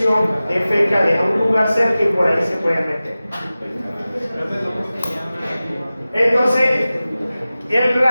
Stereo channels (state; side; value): inverted; both; correlation -0.96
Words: defeca, deja un lugar cerca y por ahí se puede meter. Entonces, el